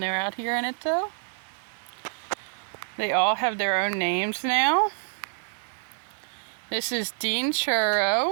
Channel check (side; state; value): left; silent; digital silence